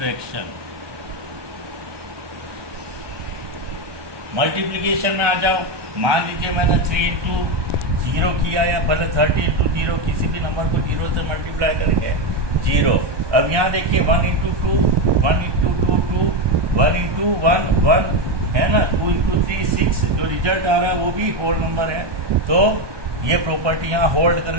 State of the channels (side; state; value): left; late; 1.2 ms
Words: मल्टीप्लिकेशन में आ जाओ, मान लीजिए मैंने 3 × 0 किया, या भले 30 × 0, किसी भी नंबर को 0 से मल्टीप्लाई करेंगे 0। अब यहाँ देखिए 1 × 2 1 × 2 2, 1 × 1 1 है ना, 2 × 3 6, जो रिजल्ट आ रहा है वो भी होल नंबर है। तो ये प्रॉपर्टी यहाँ होल्ड कर